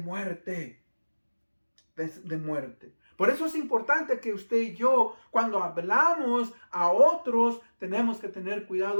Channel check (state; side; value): inverted; both; correlation -1.00